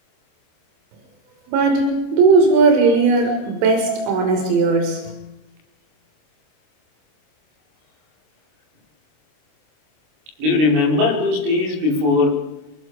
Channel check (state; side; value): late; left; 26 ms